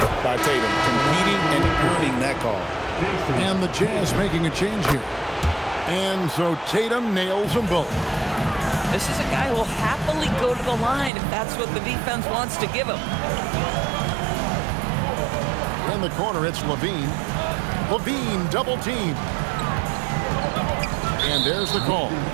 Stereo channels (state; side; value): drops out; left; at 11.1 s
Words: by Tatum, competing and earning that call. And the Jazz making a change here. And so Tatum nails them both. This is a guy who will happily go to the line if that's what the defense wants to give him. In the corner, it's Levine. Levine double team. And there's the call